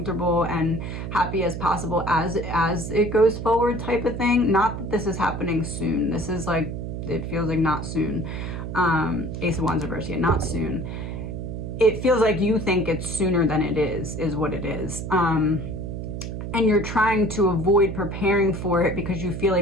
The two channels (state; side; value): noise; right; hum, 6 dB below the sound